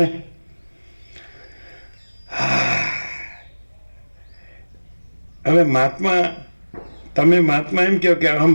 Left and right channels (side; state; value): both; inverted; correlation -1.00